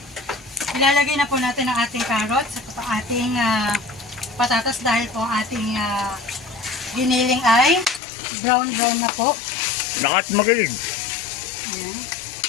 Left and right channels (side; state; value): right; drops out; at 8.0 s